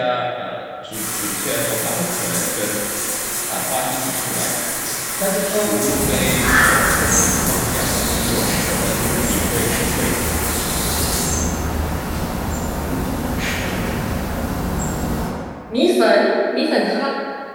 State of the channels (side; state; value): both; identical; correlation 1.00